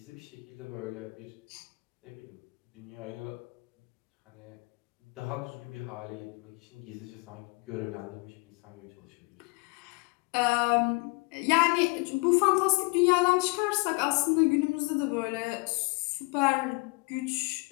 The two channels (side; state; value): right; quieter; 28.2 dB